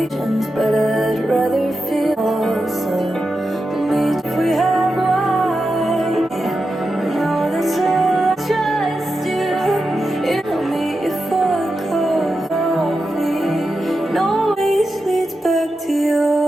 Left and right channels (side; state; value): both; normal; correlation 0.89